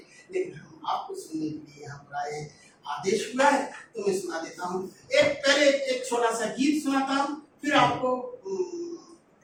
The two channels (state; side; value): identical; both; correlation 1.00